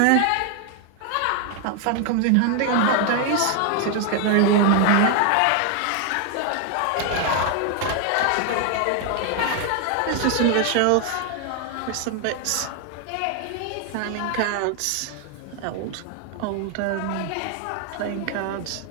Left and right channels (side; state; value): both; different; correlation 0.00